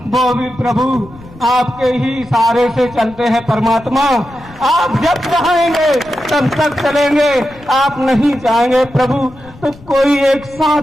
वो भी प्रभु आपके ही इशारे से चलते हैं परमात्मा। आप जब चाहेंगे तब तक चलेंगे, आप नहीं चाहेंगे प्रभु तो कोई एक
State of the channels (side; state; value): left; noise; rumble, 22 dB below the sound